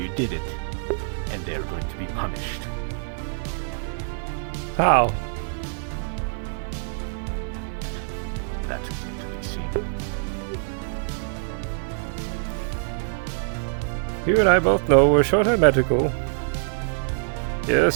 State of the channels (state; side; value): silent; left; digital silence